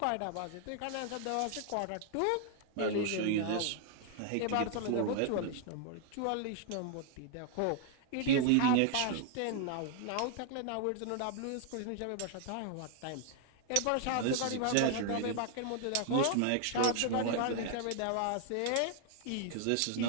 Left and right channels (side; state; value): both; different; correlation 0.00